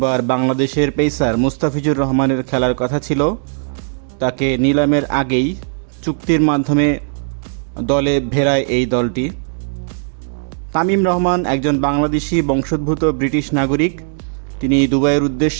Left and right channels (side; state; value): left; silent; 68 dB below the other